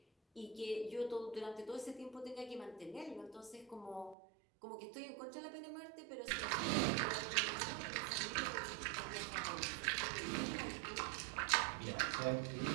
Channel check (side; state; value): left; drops out; at 4.2 s